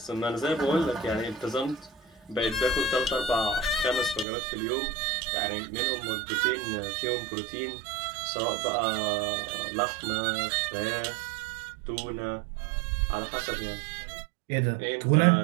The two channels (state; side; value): drops out; left; at 4.2 s